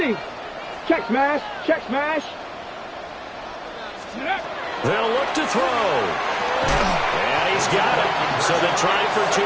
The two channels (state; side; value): identical; both; correlation 1.00